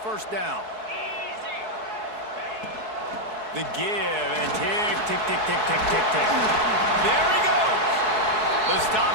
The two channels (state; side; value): late; left; 4.7 ms